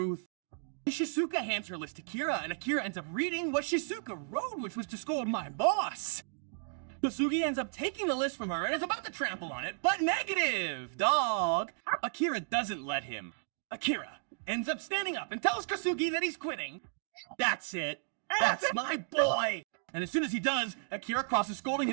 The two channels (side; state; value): left; silent; digital silence